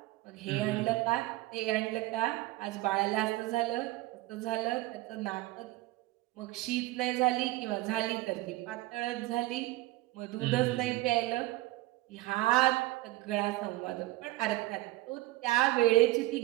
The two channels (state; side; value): quieter; left; 18.9 dB